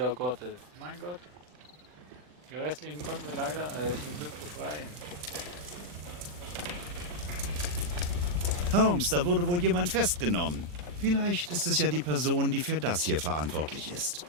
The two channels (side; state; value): left; late; 40 ms